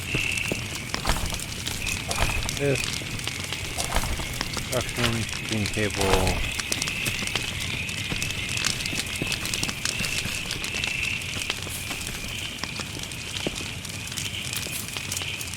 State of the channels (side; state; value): both; identical; correlation 1.00